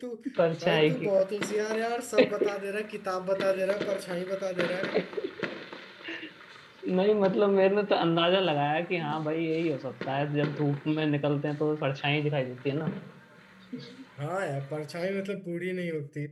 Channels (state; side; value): identical; both; correlation 1.00